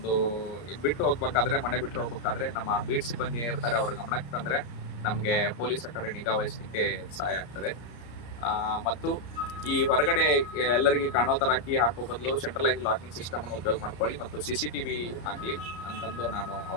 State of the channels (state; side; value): late; right; 34 ms